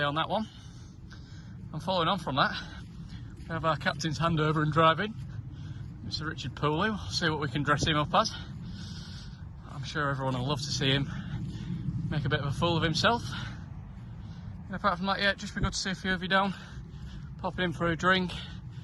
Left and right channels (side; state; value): both; identical; correlation 1.00